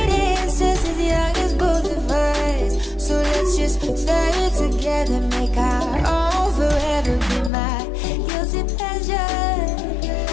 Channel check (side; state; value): right; drops out; at 7.5 s